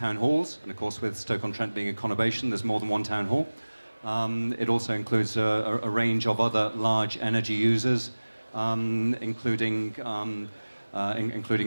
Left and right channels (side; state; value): both; inverted; correlation -1.00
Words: halls, and of course with Stoke-on-Trent being a conurbation, there's more than one town hall. It also includes a range of other large energy users, including